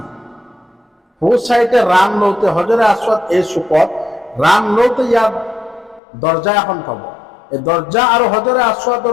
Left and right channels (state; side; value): drops out; right; at 6.0 s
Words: সো সাইডে রান লওতে হজরে আসওয়াদ এই চুকত রান লওতে ইয়াত দরজা এখন পাব। এই দরজা আৰু হজরে